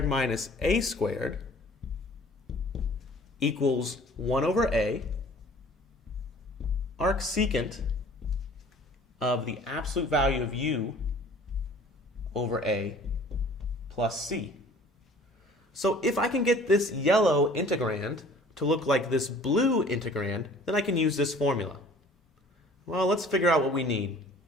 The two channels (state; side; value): normal; both; correlation 0.50